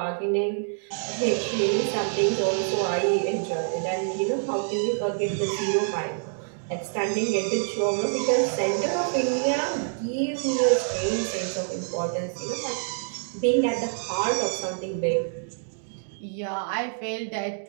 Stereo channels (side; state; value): left; silent; digital silence